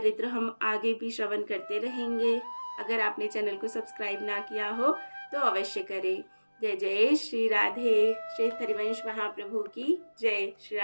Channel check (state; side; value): inverted; both; correlation -1.00